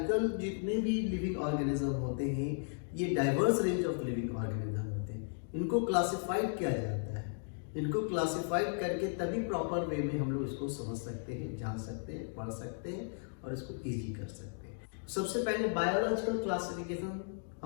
जितने भी लिविंग ऑर्गेनिज्म होते हैं, ये diverse range of living organism होते हैं। इनको क्लासिफाइड किया जाता है। इनको क्लासिफाइड करके तभी प्रॉपर वे में हम लोग इसको समझ सकते हैं, जान सकते हैं, पढ़ सकते हैं और इसको ईजी कर सकते हैं। सबसे पहले बायोलॉजिकल क्लासिफिकेशन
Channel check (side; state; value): right; silent; digital silence